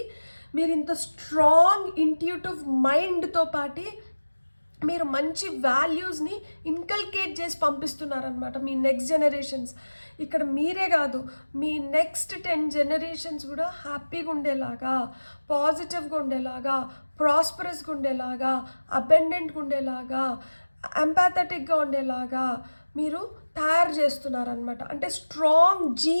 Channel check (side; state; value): both; inverted; correlation -1.00